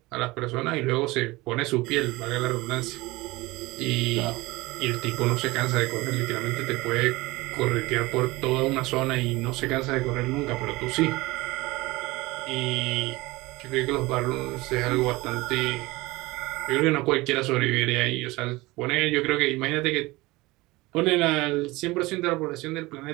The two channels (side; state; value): left; quieter; 21.4 dB